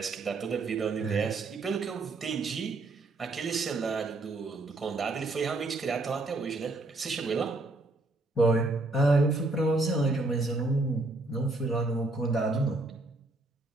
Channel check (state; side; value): quieter; left; 3.0 dB